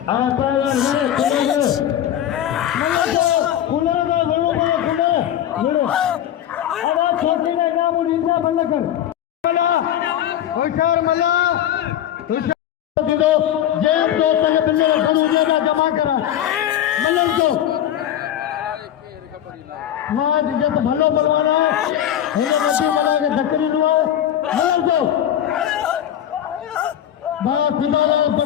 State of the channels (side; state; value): right; quieter; 11.0 dB